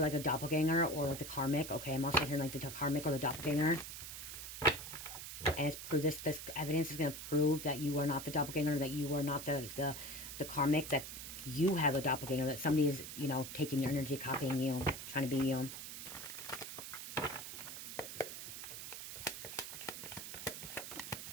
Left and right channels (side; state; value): right; noise; hiss, 9 dB below the sound